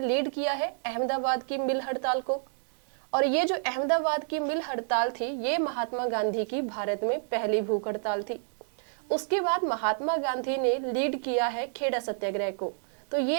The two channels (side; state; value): left; silent; digital silence